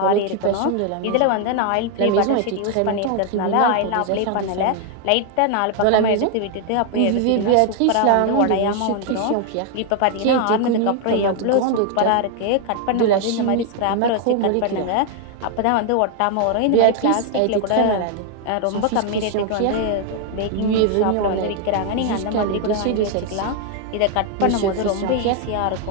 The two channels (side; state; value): both; different; correlation 0.00